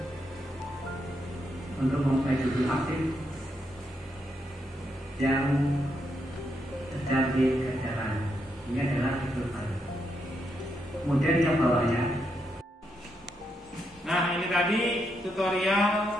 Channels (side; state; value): both; normal; correlation 0.80